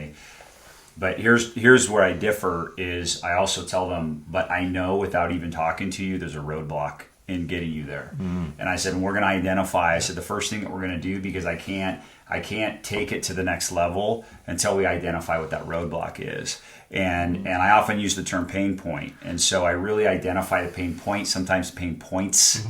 But here's where I differ is I also tell them, but I know without even talking to you, there's a roadblock in getting you there. And I said, we're going to identify. I said, the first thing that we're going to do, because I can't take it to the next level until we identify what that roadblock is. And I often use the term pain point. And so I really identify the pain point, sometimes pain points,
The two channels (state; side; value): identical; both; correlation 1.00